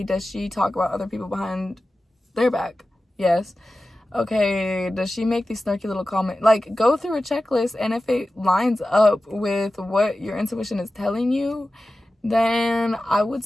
does she talk about other people behind their back? Yes. Okay, does she make these snarky little comments? Like, go through a checklist, and if it lines up with what your intuition is telling you, then I would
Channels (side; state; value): both; normal; correlation 0.95